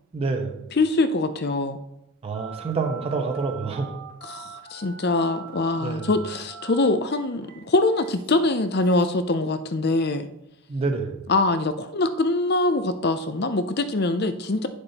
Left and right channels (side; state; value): both; normal; correlation 0.26